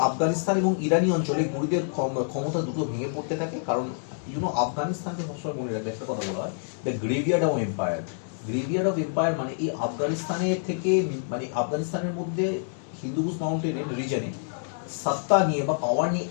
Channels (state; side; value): silent; right; digital silence